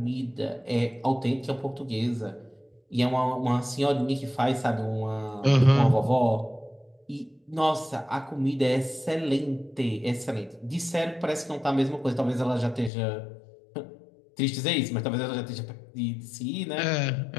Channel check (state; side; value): drops out; right; at 12.9 s